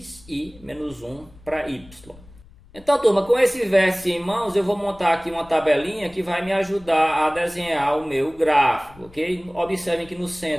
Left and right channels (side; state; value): left; noise; rumble, 23 dB below the sound